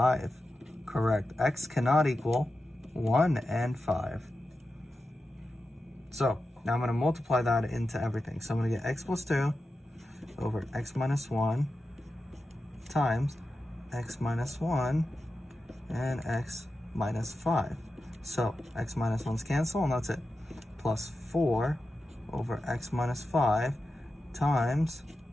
Correct. X cannot equal 1 and 5. So now I'm going to multiply that into everything. So I'm going to get x plus 2 over x minus 1 times x minus 1 and x minus 5. So x minus 1's cancel, and that's it. Plus 4 over x minus 5 times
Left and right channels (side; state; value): both; normal; correlation 0.91